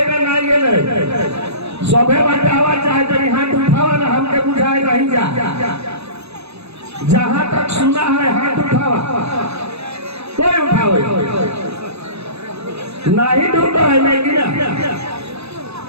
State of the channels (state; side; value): late; left; 0.79 ms